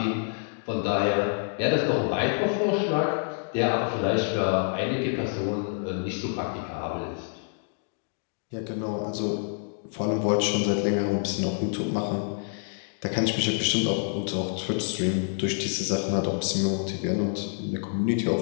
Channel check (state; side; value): silent; right; digital silence